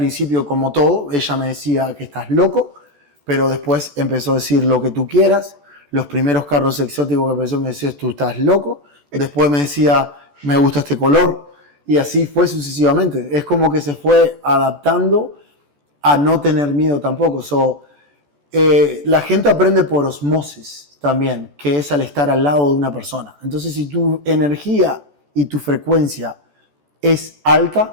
como todo, ella me decía que estás loco, pero después empezó a decir lo que tú quieras. Los primeros carros exóticos que empezó me decía, tú estás loco. Después me decía, me gusta este color. Y así fue sucesivamente. Es como que se fue adaptando a no tener miedo tampoco. La gente aprende por osmosis también, que es al estar al lado de una persona. Entonces, si tu energía y tu frecuencia es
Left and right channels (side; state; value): left; late; 14 ms